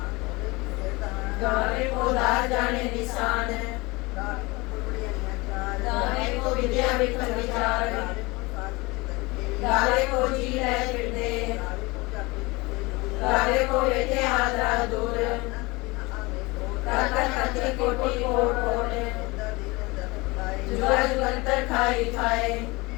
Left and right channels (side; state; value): right; quieter; 24.0 dB